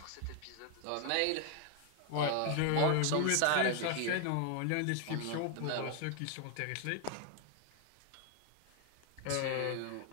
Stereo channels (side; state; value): both; different; correlation 0.00